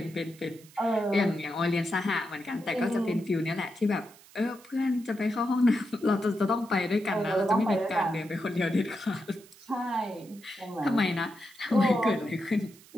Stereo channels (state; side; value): noise; right; hiss, 24 dB below the sound